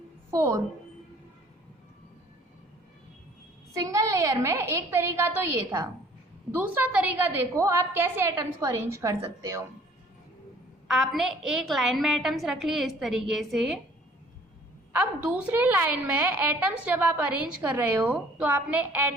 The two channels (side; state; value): both; normal; correlation 0.55